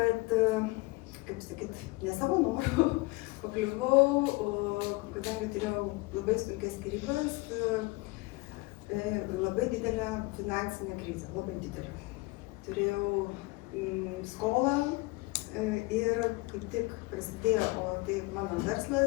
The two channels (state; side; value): quieter; right; 24.0 dB